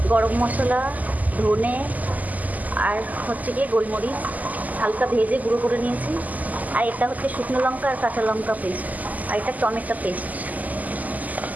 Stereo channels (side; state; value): left; late; 0.079 ms